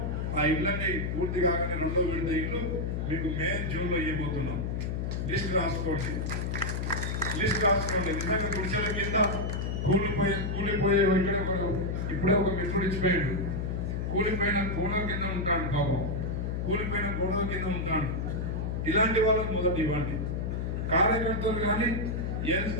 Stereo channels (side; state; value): left; noise; hum, 1 dB below the sound